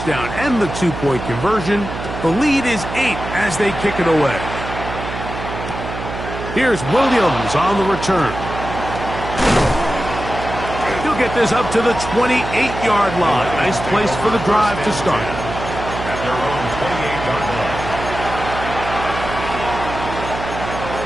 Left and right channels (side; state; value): right; noise; hum, 8 dB below the sound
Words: and the 2-point conversion, the lead is 8 as they kick it away. Here's Williams on the return. He'll get this up to the 28-yard line. Nice place for the drive to start. At their own 28-yard line.